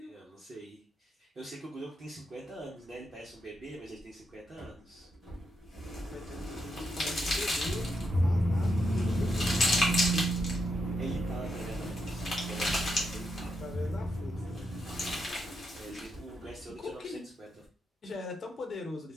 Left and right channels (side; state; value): both; normal; correlation 0.82